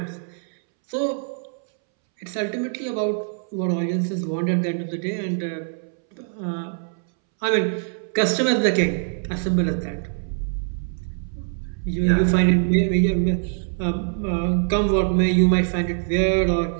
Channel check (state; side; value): silent; left; 63 dB below the other